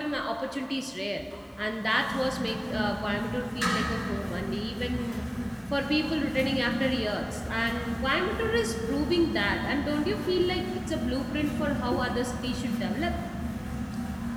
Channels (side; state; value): both; identical; correlation 1.00